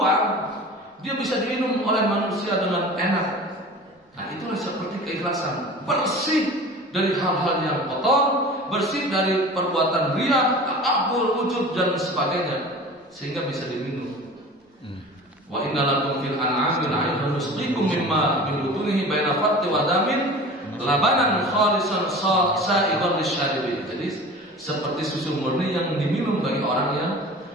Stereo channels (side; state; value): both; normal; correlation 0.38